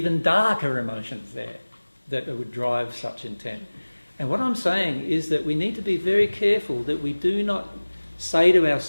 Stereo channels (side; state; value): both; inverted; correlation -1.00